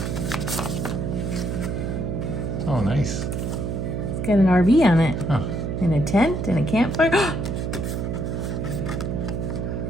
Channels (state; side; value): noise; right; hum, 2 dB below the sound